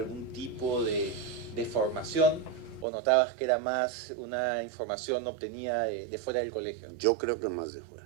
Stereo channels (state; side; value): drops out; left; at 2.9 s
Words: tipo de formación, o notabas que era más una información obtenida de fuera del colegio? Yo creo que más de fuera.